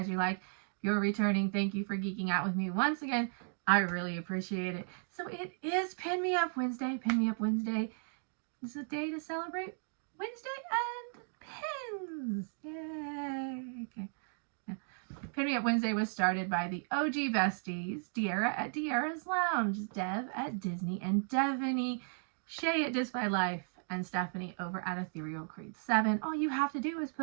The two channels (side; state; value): left; silent; 54 dB below the other